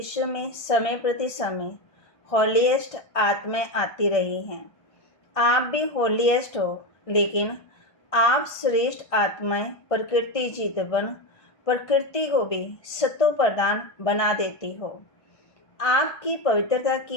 में समय प्रति समय होलीएस्ट आत्माएं आती रही हैं। आप भी होलीएस्ट हो, लेकिन आप श्रेष्ठ आत्माएं प्रकृति जीत बन प्रकृति को भी सतो प्रदान बना देती हो। आपकी पवित्रता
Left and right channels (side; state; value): right; late; 1.5 ms